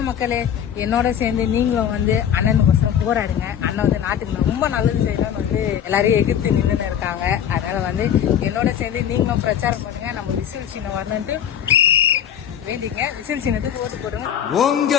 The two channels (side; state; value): right; quieter; 9.3 dB